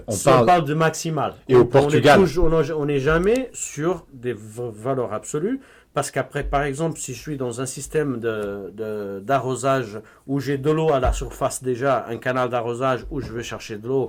Enfin, on parle de maximal. Et au Portugal. On n'est jamais sur des valeurs absolues. Parce qu'après, par exemple, si je suis dans un système d'arrosage où j'ai de l'eau à la surface déjà, un canal d'arrosage où je vais chercher de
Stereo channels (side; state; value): both; identical; correlation 1.00